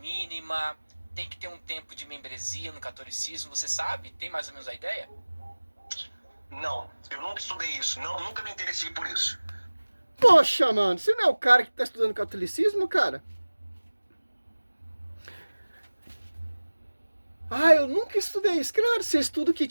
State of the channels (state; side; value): inverted; both; correlation -1.00